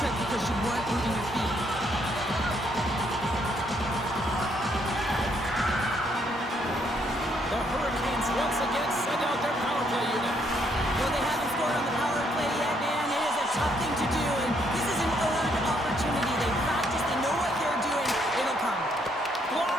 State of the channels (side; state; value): both; normal; correlation 0.71